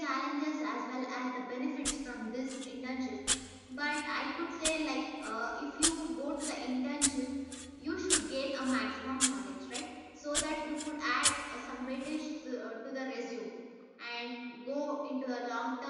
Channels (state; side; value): identical; both; correlation 1.00